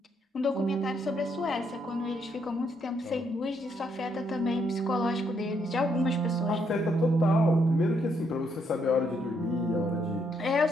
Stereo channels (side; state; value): both; normal; correlation 0.74